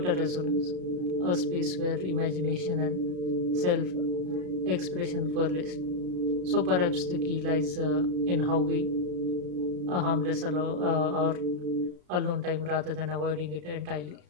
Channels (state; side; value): late; left; 33 ms